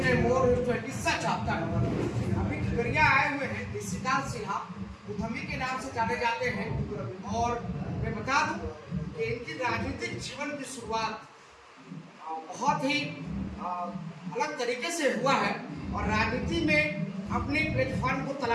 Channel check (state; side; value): identical; both; correlation 1.00